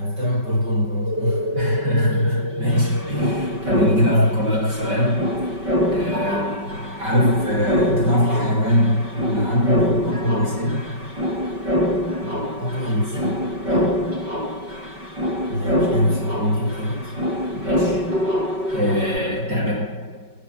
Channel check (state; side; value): late; left; 5.2 ms